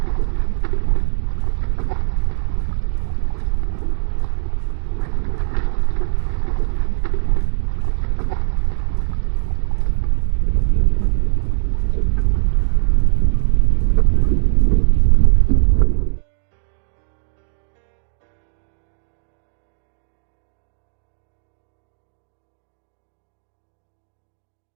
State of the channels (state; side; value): silent; left; 58 dB below the other